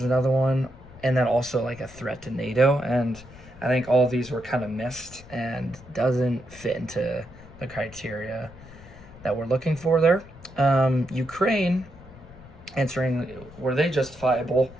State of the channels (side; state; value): left; noise; rumble, 19 dB below the sound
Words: another one, and then also like a threat to NATO. And I think all of these were kind of missed and doesn't fit into the criteria that we're looking for there. Ukraine, answering were they justifiable?